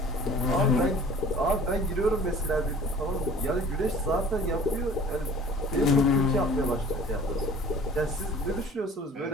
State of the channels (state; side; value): normal; both; correlation 0.47